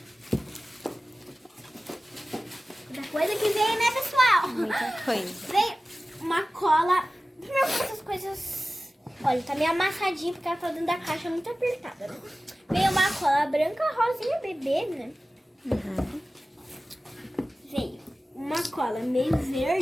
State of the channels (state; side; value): normal; both; correlation 0.96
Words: Outra coisa que veio, né, pessoal? Muita coisa. Veio uma cola. Primeiro essas coisas. Olha, tá meio amassadinha porque ela tá dentro da caixa muito apertada, né? Veio uma cola branca, rosinha, bebê, né? Uhum. Veio uma cola meio